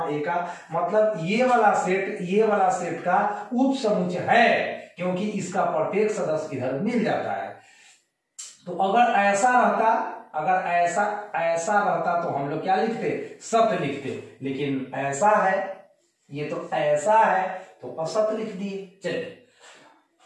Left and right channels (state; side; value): identical; both; correlation 1.00